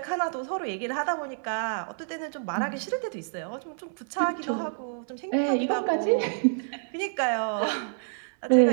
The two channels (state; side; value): silent; left; digital silence